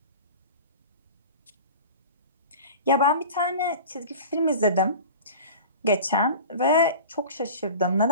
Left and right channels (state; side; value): inverted; both; correlation -0.36